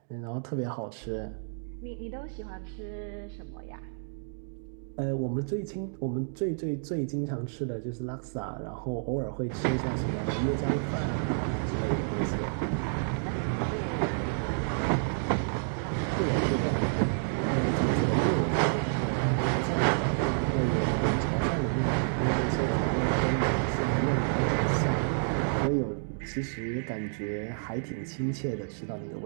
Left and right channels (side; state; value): left; silent; digital silence